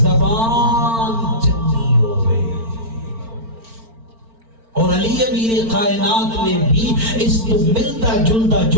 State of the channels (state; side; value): late; left; 4.4 ms